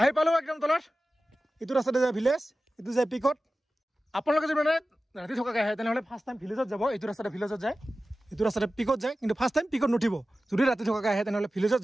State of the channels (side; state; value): both; normal; correlation 0.95